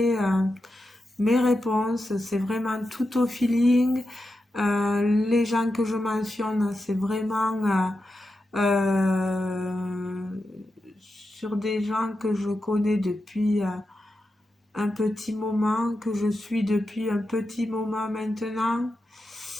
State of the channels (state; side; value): normal; both; correlation 0.89